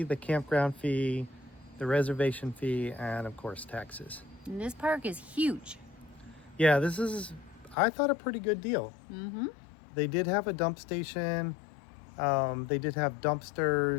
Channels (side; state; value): right; drops out; at 7.8 s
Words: the campground fee, the reservation fee, and of course taxes. And this park is huge. Yeah, this is, I thought, a pretty good deal. Mm-hmm. They did have a dump station. They did have